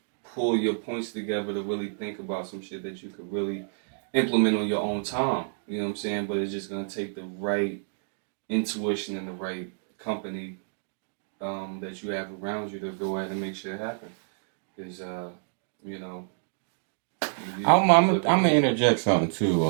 pull your points together to really think about some shit that you could really implement on your own time. You know what I'm saying? But it's just gonna take the right intuition and the right company that you have around you to go ahead and make shit happen. Because you know, I'm gonna interject something too,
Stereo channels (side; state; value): left; silent; digital silence